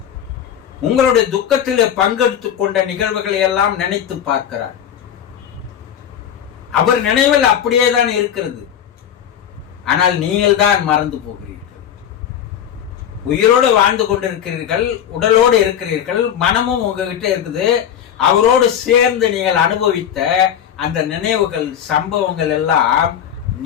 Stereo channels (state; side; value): quieter; right; 9.4 dB